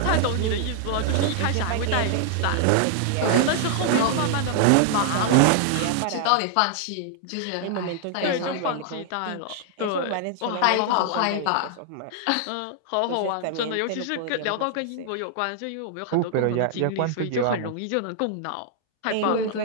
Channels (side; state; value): both; different; correlation -0.01